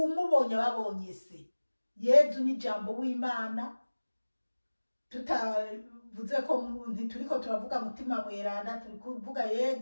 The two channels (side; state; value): both; inverted; correlation -1.00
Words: babonye se. Yezu ni jambo w'Imana. Tutavuze ko ntituriko turavuga mutima mweranda, turi kuvuga